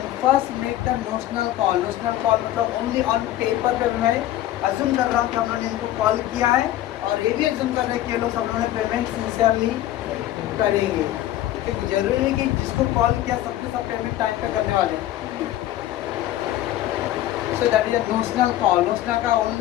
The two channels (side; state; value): right; quieter; 13.8 dB